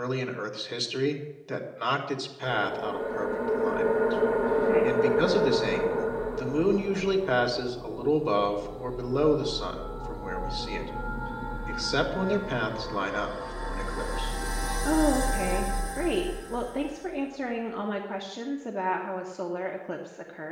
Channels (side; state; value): both; identical; correlation 1.00